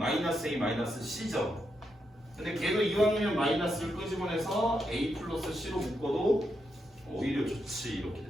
A 마이너스 C죠. 근데 걔도 이왕이면 마이너스를 끄집어내서 A 플러스 C로 묶어도 오히려 좋지. 이렇게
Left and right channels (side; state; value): both; normal; correlation 0.83